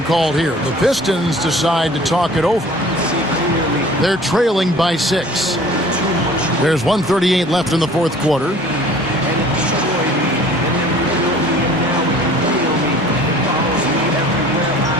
called here. The Pistons decide to talk it over. They're trailing by 6. There's 1:38 left in the fourth quarter.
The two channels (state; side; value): normal; both; correlation 0.48